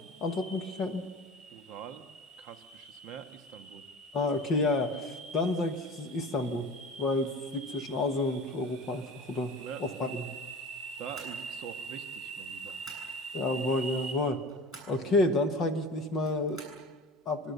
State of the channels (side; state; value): both; normal; correlation 0.37